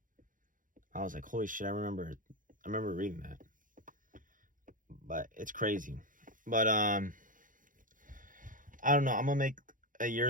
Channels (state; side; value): late; left; 0.39 ms